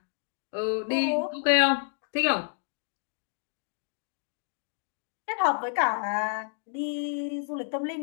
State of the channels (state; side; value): silent; right; digital silence